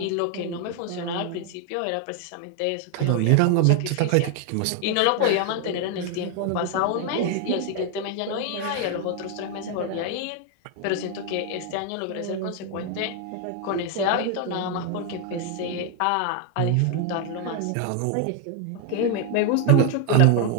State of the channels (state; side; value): different; both; correlation 0.01